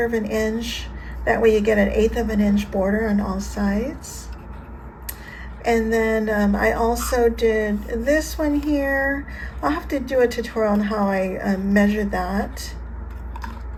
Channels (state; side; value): identical; both; correlation 1.00